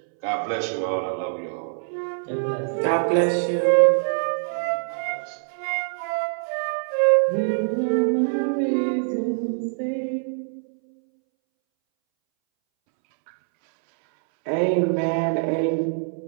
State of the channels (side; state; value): left; silent; 63 dB below the other